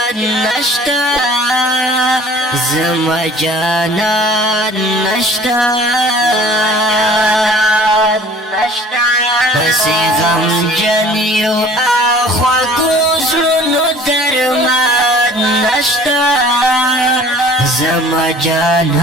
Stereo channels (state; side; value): normal; both; correlation 0.49